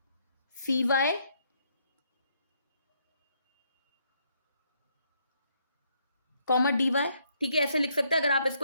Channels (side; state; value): both; inverted; correlation -0.72